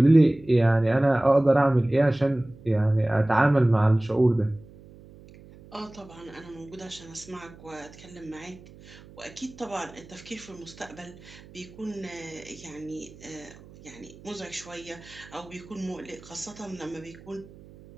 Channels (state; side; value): noise; right; hum, 21 dB below the sound